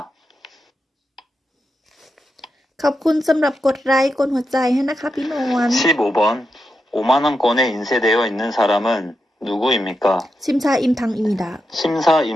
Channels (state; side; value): normal; both; correlation 0.87